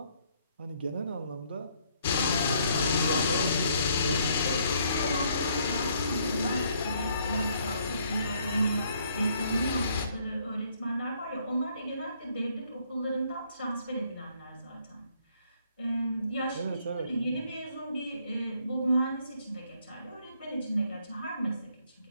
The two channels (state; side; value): inverted; both; correlation -0.67